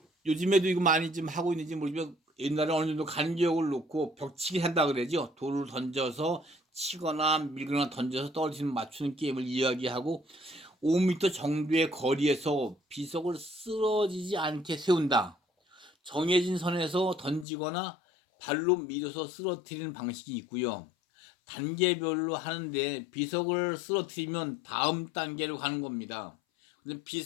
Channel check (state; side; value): drops out; right; at 17.4 s